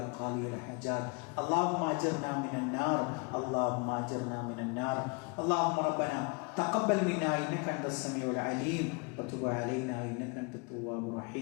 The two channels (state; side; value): quieter; right; 30.9 dB